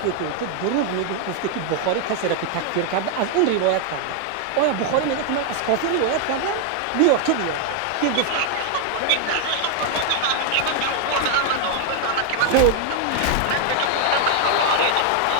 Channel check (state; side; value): different; both; correlation 0.00